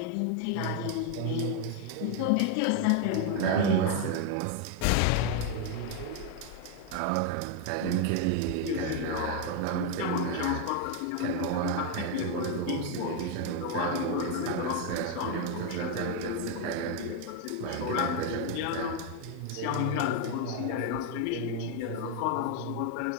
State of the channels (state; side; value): different; both; correlation 0.01